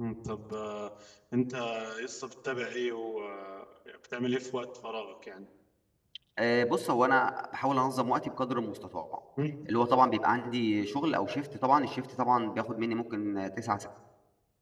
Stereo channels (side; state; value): both; identical; correlation 1.00